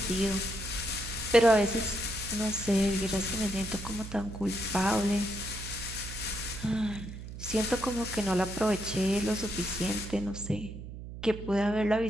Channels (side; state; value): right; noise; hum, 11 dB below the sound